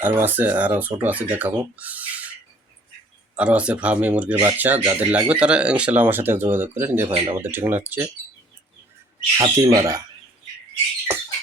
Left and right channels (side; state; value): both; normal; correlation 0.57